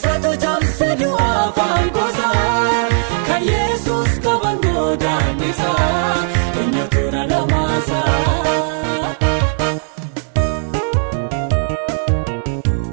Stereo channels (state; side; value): silent; left; digital silence